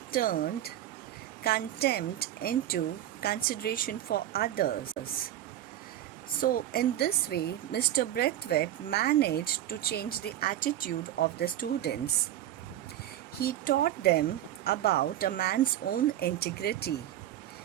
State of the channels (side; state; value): left; quieter; 12.5 dB